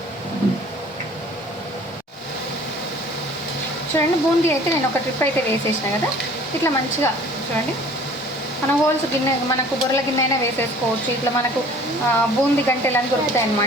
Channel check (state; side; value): normal; both; correlation 0.49